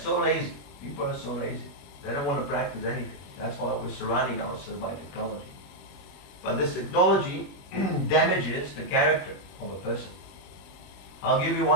lazy. People are so lazy. They don't want to practice anything. That's why we're surrounding ourselves by technology. But this technology damages the character of a person. I'll give you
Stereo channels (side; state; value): right; late; 21 ms